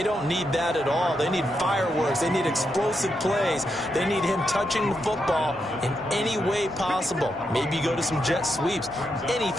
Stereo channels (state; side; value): normal; both; correlation 0.83